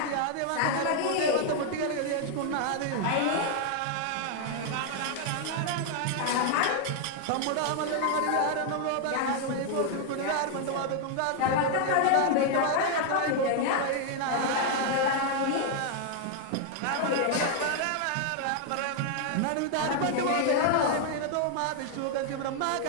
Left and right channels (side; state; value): both; different; correlation 0.00